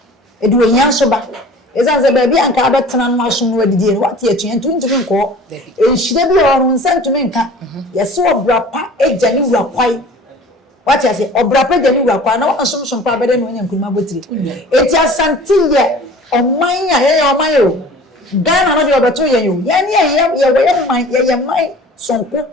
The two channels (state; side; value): normal; both; correlation 0.45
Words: edu enya so ba ezanze ba bia nka abetena no aso no adidi no wate atuen ntumi nko enhire bi oru nsa ntumi nka yesi obrapa eja ni wurakwai wate ase obrapa eja ni wurakwai na wansomsom pa bede no nya nkuruma botire eti asante ye oman ya ye oman yo Ghana no de obeto ye yo ye ne ye man sonko